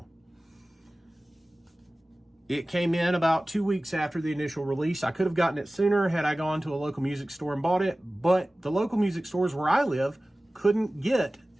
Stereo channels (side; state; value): both; normal; correlation 0.97